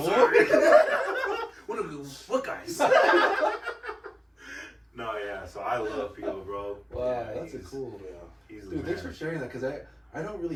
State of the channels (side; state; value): both; identical; correlation 1.00